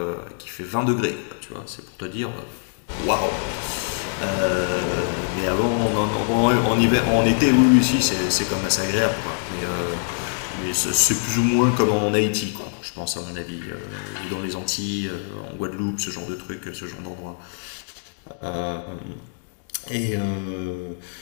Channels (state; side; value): silent; right; digital silence